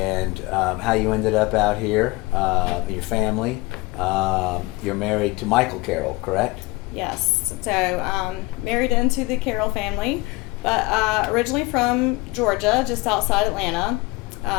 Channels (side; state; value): right; quieter; 22.8 dB